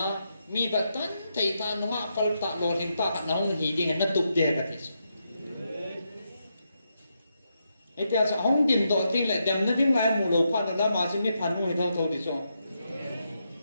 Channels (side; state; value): both; inverted; correlation -0.83